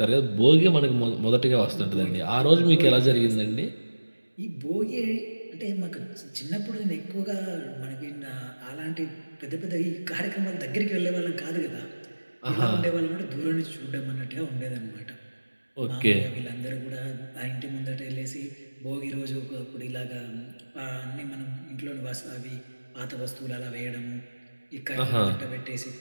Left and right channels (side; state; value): both; inverted; correlation -1.00